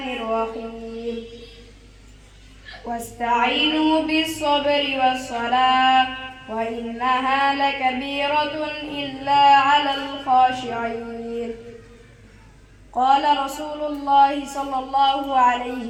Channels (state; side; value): identical; both; correlation 1.00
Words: الرحيم. واستعينوا بالصبر والصلاة وإنها لكبيرة إلا على الخاشعين. قال رسول الله صلى الله عليه